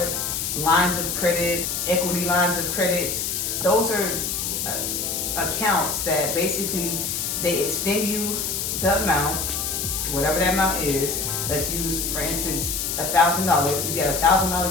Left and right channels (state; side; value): noise; left; hiss, 2 dB below the sound